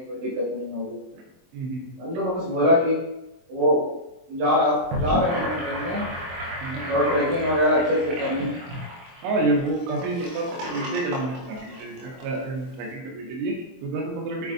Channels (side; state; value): left; late; 23 ms